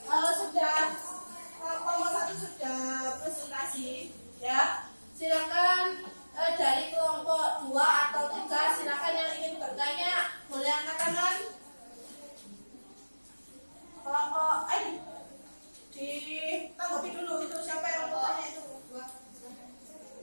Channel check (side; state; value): both; inverted; correlation -1.00